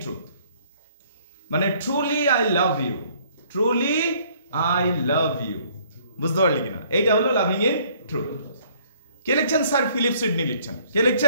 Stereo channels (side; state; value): both; inverted; correlation -0.61